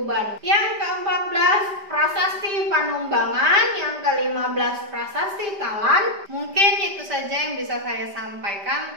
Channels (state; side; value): late; left; 5.1 ms